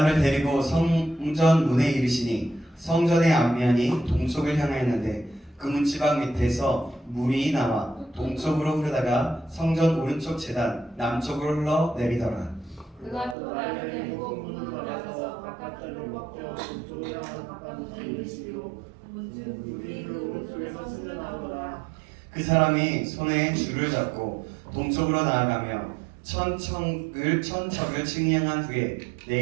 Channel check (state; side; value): drops out; left; at 13.4 s